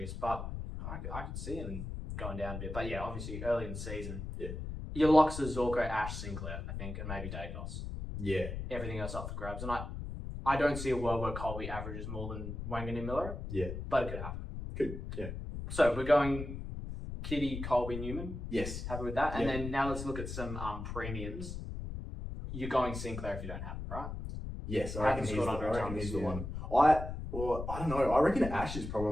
but I could see him going down a bit. But yeah, obviously early in the season. Yeah. Your locks are Zorko, Ash, Sinclair, I think, and maybe Dacos. Yeah. Everything else up for grabs. And I don't see a world where Colby averages more than Wangan and Miller. Yeah. But it could happen. Good. Yeah. So we're going Kitty, Colby, Newman. Yes. Happy with that? And Yeah. then now let's look at some premiums. You're going Sinclair if you don't have it, right? Yes, I Hasn't reckon he's scored the, under I a reckon ton he's this the year. one. I don't know. I reckon Ash is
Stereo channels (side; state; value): left; noise; rumble, 6 dB below the sound